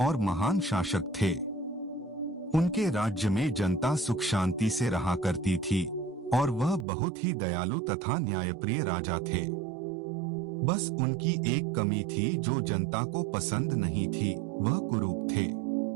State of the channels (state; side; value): drops out; left; at 6.9 s